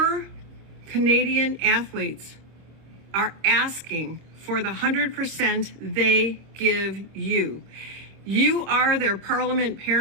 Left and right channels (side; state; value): left; late; 26 ms